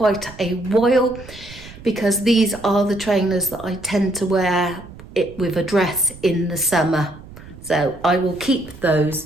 a while because these are the trainers that I tend to wear it with a dress in the summer. So I will keep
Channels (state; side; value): noise; right; rumble, 17 dB below the sound